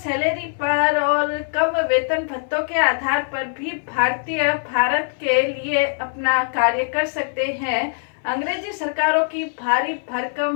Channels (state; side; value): silent; right; 64 dB below the other